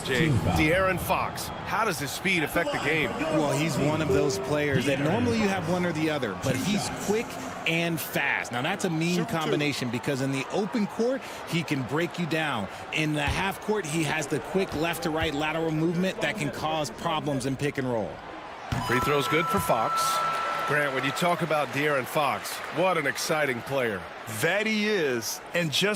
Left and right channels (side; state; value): both; identical; correlation 1.00